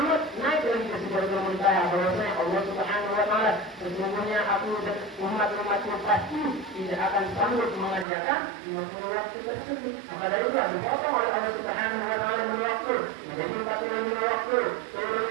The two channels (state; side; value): drops out; left; at 8.1 s